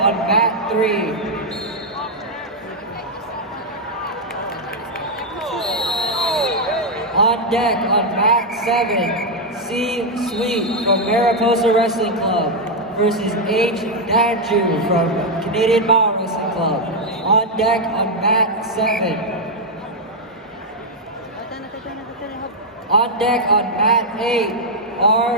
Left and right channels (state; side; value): normal; both; correlation 0.00